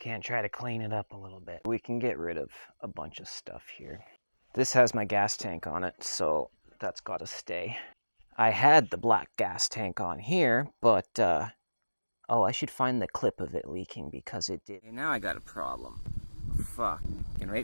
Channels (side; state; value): both; inverted; correlation -1.00